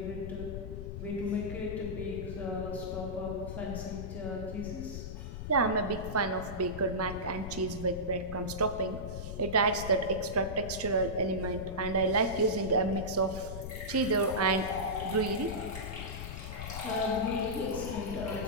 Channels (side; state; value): left; noise; rumble, 7 dB below the sound